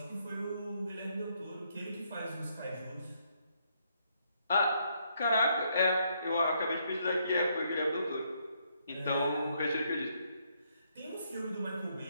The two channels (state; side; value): inverted; both; correlation -0.73